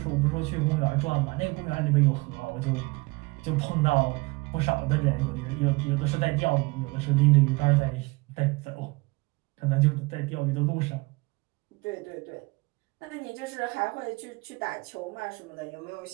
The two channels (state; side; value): quieter; left; 25.4 dB